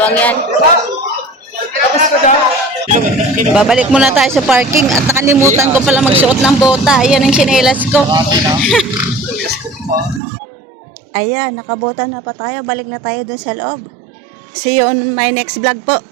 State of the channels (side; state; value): left; drops out; at 10.2 s